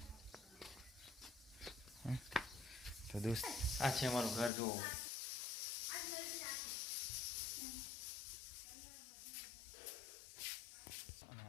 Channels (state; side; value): drops out; right; at 4.5 s